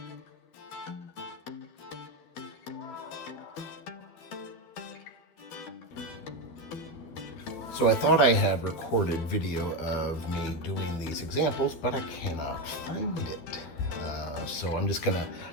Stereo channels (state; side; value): late; right; 12 ms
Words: I thought I had recorded video of me doing these examples, but I cannot find it. So I'm just gonna,